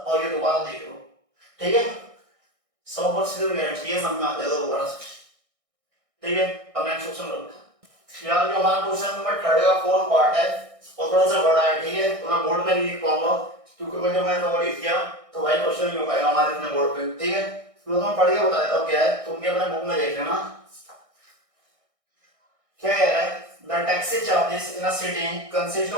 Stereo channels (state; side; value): late; left; 1.6 ms